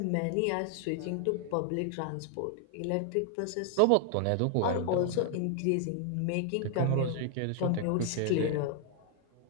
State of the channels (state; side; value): different; both; correlation 0.00